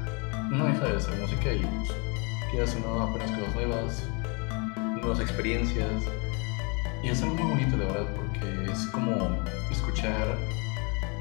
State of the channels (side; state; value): right; quieter; 32.3 dB